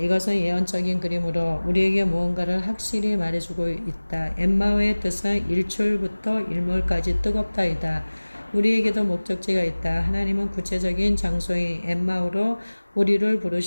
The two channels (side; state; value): both; inverted; correlation -1.00